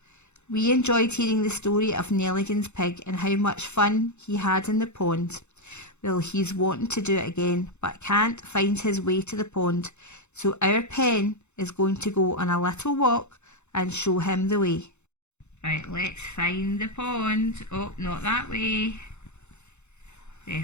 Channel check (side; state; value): right; late; 0.82 ms